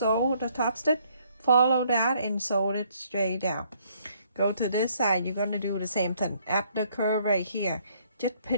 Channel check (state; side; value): inverted; both; correlation -0.66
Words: the top stitch? Follow that and sew it straight down. Go to this side, you're going to do the same thing. At the curve right here, just